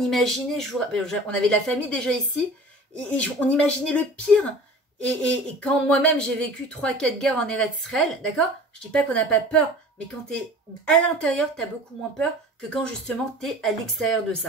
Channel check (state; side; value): normal; both; correlation 0.42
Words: on avait de la famille déjà ici, et on imaginait le pire. Et quand moi-même j'ai vécu 3-4 guerres en Eretz Israël, d'accord, je dis pas qu'on n'a pas peur, mais quand tu es à l'intérieur, tu as beaucoup moins peur que quand justement tu es à l'extérieur de